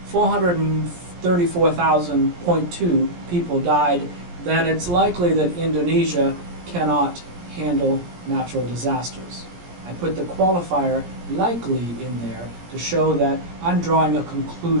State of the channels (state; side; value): late; left; 17 ms